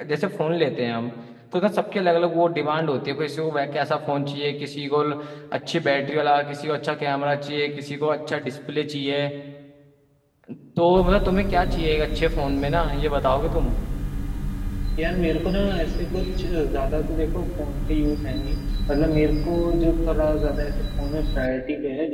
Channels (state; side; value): identical; both; correlation 1.00